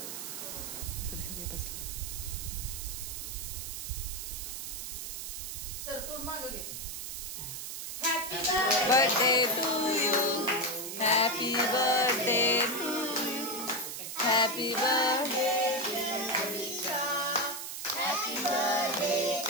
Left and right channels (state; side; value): noise; right; hiss, 6 dB below the sound